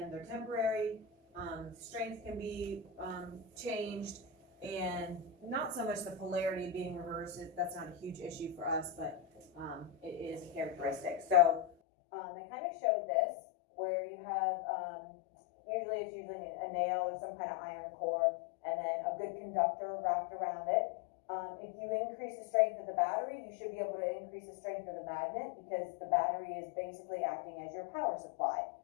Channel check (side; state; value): right; drops out; at 11.7 s